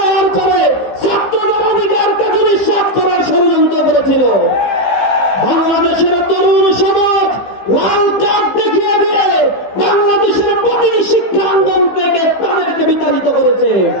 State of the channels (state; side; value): late; right; 15 ms